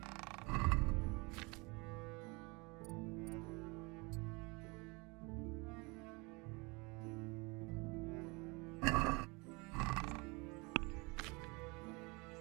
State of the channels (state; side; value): quieter; left; 27.5 dB